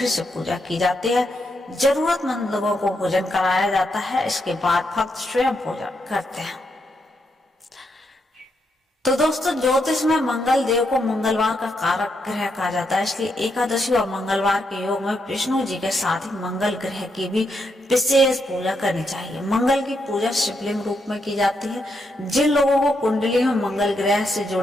से पूजा की जाती है। जरूरतमंद लोगों को भोजन कराया जाता है। इसके बाद भक्त स्वयं भोजन करते हैं। तो दोस्तों ज्योतिष में मंगल देव को मंगलवार का कारक ग्रह कहा जाता है, इसलिए एकादशी और मंगलवार के योग में विष्णु जी के साथ ही मंगल ग्रह की भी विशेष पूजा करनी चाहिए। मंगल की पूजा शिवलिंग रूप में की जाती है। जिन लोगों को कुंडली में मंगल ग्रह से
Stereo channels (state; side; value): normal; both; correlation 0.80